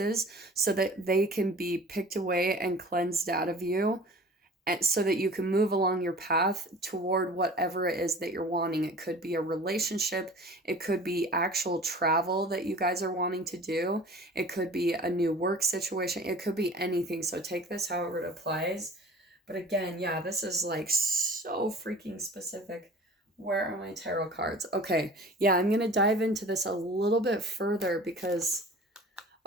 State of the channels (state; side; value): normal; both; correlation 0.43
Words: so that they can be picked away and cleansed out of you, and so that you can move along your path toward whatever it is that you're wanting. It could be a relationship, it could be actual travel that you guys are wanting to do, it could be a new work situation, it could be anything. So take this however it applies. But again, yeah, this is like so freaking specific. Where are my tarot cards? Okay, yeah, I'm gonna dive into this a little bit further because,